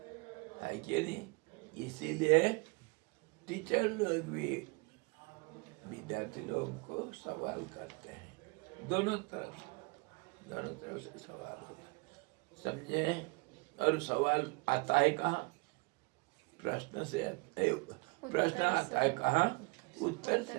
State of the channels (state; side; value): quieter; left; 30.8 dB